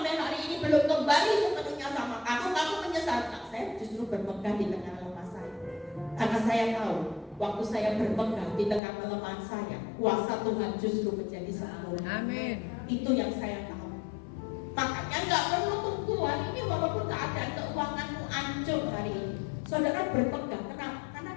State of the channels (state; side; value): drops out; right; at 8.8 s